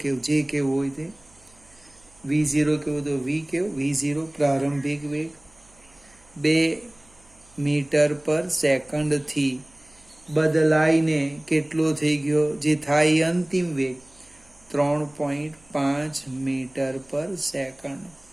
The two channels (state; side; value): noise; right; hum, 29 dB below the sound